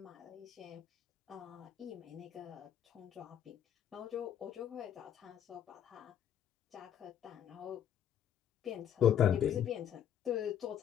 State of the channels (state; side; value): quieter; right; 9.6 dB